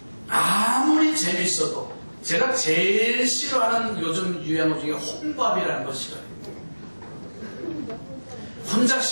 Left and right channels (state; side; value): inverted; both; correlation -1.00